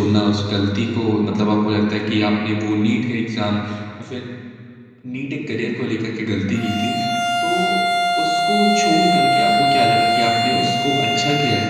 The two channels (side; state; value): both; identical; correlation 1.00